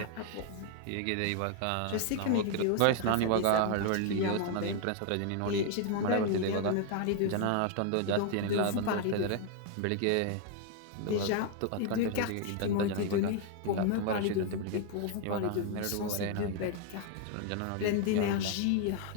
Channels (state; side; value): different; both; correlation 0.00